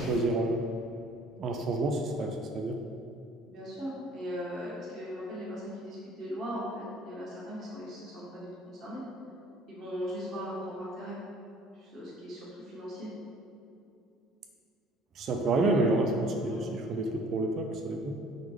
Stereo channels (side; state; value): both; normal; correlation 0.54